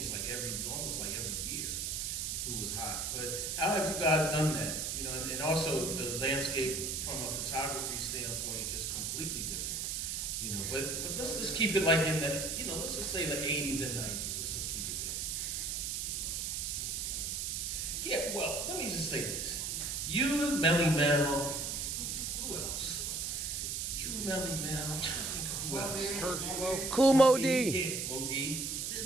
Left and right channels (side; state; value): right; noise; hiss, 2 dB below the sound